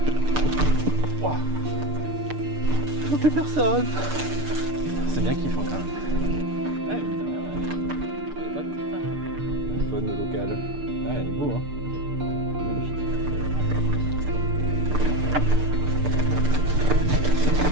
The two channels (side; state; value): left; late; 6.7 ms